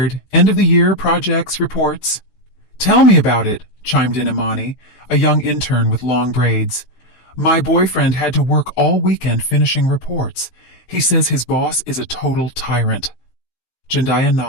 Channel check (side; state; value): right; late; 15 ms